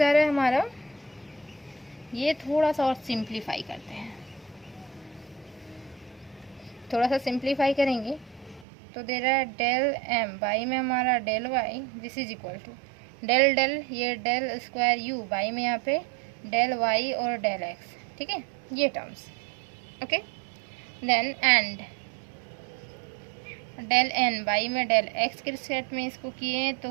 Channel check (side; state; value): left; drops out; at 8.7 s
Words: रहा है हमारा, ये थोड़ा सा और सिंप्लीफाई करते हैं, थोड़ा सा सिंप्लीफाई करेंगे तो दे रहा है डेल एम बाई में हमारा del Y, this is equal to del del, ये डेल स्क्वायर यू बाई में यहाँ पे डेल वाई और डेल एक्स, ठीक है, ये terms, okay. Then and del N by में डेल एक्स के रिस्पेक्ट में इसको किए तो